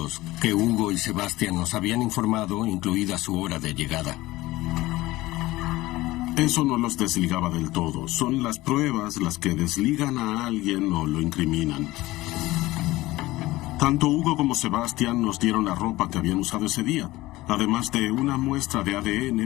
que Hugo y Sebastián nos habían informado, incluida su hora de llegada. Eso no los desligaba del todo. Son las pruebas las que desligan a alguien o lo incriminan. Tanto Hugo como Sebastián nos dieron la ropa que habían usado ese día, además de una muestra de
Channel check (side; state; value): right; quieter; 18.3 dB